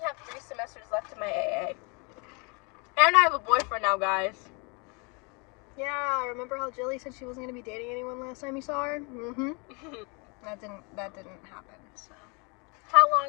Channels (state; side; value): quieter; right; 32.1 dB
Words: have 3 semesters left in my AA. And I have a boyfriend now, guys. Yeah, remember how Jilly said she wasn't gonna be dating anyone last time you saw her? Mm-hmm. That didn't happen, so. How